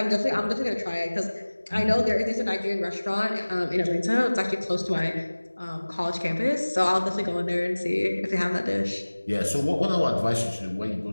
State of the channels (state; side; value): inverted; both; correlation -1.00